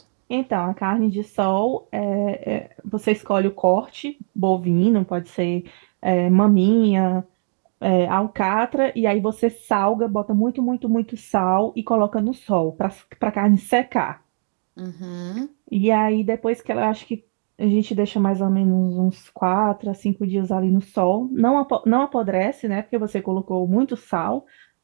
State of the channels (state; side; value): silent; left; 65 dB below the other